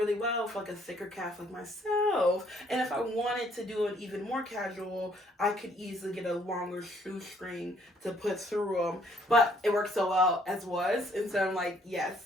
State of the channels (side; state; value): both; normal; correlation 0.65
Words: well for like a thicker calf like myself. And if I wanted to do it even more casual, I could easily get a longer shoestring to put through them. But it worked so well as was, and so I'm like, yes,